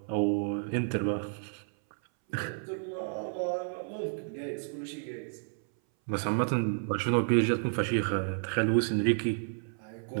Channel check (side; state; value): left; silent; 57 dB below the other